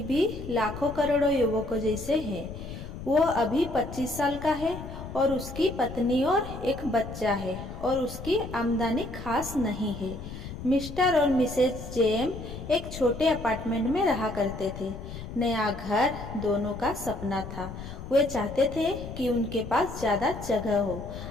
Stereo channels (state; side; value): noise; left; rumble, 10 dB below the sound